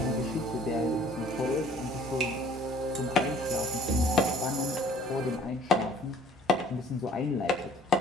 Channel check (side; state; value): both; normal; correlation 0.55